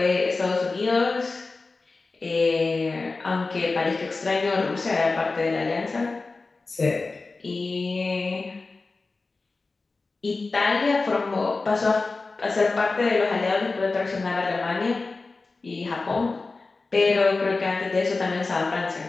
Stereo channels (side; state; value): right; quieter; 3.7 dB